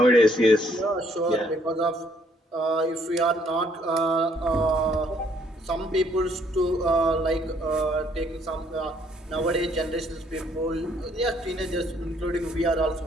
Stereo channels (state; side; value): normal; both; correlation 0.66